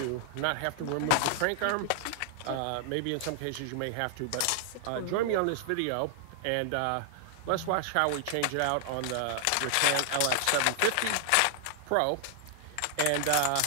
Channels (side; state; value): both; different; correlation 0.00